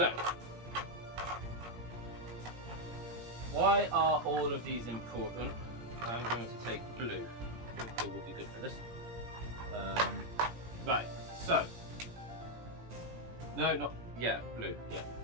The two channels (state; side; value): late; left; 17 ms